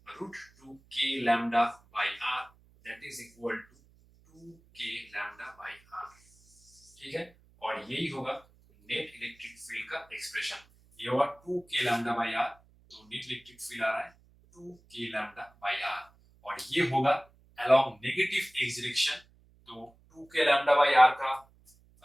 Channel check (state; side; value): noise; right; hum, 29 dB below the sound